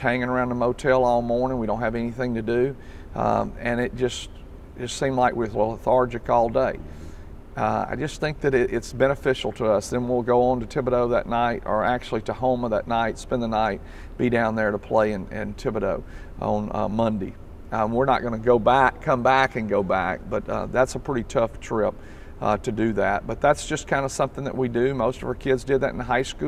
hanging around the motel all morning. We don't have anything to do. And it just seemed like we were lethargic all day. I just think that it's beneficial to us. Then we'll go on to Thibodaux that night, or actually to Houma that night, spend the night, be down there to play in Thibodaux on Monday. We're not going to come back and go back, but that's a pretty tough trip to do that. But that's just kind of something that we do. Most of our kids did that in high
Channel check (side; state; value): both; identical; correlation 1.00